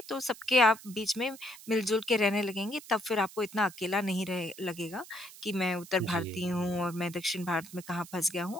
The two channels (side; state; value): right; noise; hiss, 18 dB below the sound